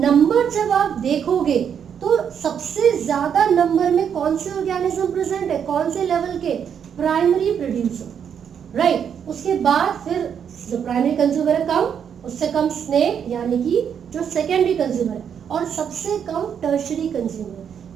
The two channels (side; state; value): left; quieter; 8.0 dB